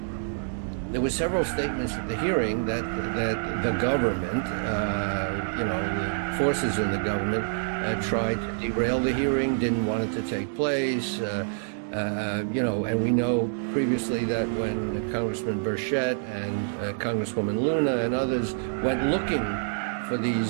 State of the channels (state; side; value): silent; left; digital silence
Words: There were several statements at the hearing that the government, the forces in the government, tried to derail the hearing, didn't want it to take place. And we know previously that when Congressman Burchett and Congresswoman Luna and others went looking for